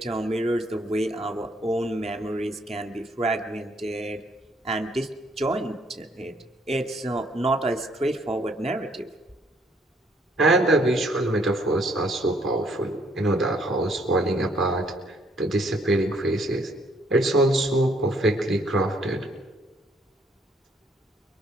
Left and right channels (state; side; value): normal; both; correlation 0.66